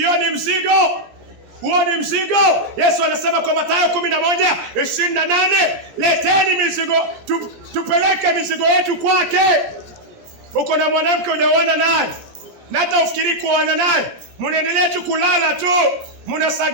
ni mzigo. Huo ni mzigo. Yesu anasema kwa Mathayo 11:28, leteni mizigo, tupeleke mizigo yetu kwake. Uko na mwanamke hujaona naye, na hata ufikiri kuoana naye, mnaendelea tu kulala tu,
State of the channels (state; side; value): late; left; 17 ms